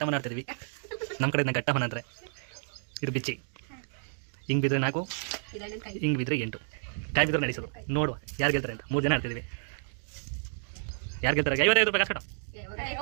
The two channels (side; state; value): left; silent; digital silence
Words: ಆಡ್ತಿದ್ವಿ, ನಮ್ಮ ಕಡೆ ಘಟ್ಟಮನ ಅಂದ್ರೆ ಇದು ಬಿಚ್ಚಿ. ಹಿಂಗ್ ಬಿದ್ರೆ 4, ಹಿಂಗ್ ಬಿದ್ರೆ 8 ಕಾಯಿ ಬಿದ್ರೆ ನಡೆಸೋದು. ನೋಡುವ ಯಾರು ಗೆಲ್ತಾರೆ ಅಂತ. 3 ಜನ ಆಡ್ತಿದ್ವಿ. ಯಾರು ಗೆಲ್ತಾರೆ? 55 ರೂಪಾಯಿ ಕಾಸು ಕಟ್ಟು.